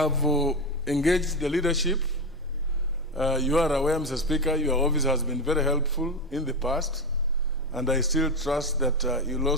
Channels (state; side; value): normal; both; correlation 0.15